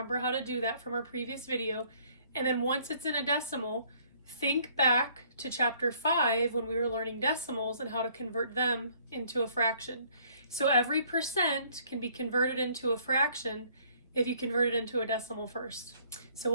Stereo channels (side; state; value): both; inverted; correlation -0.61